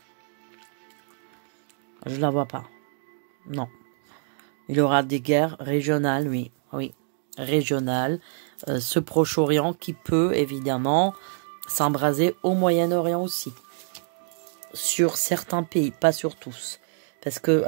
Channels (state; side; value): silent; left; 61 dB below the other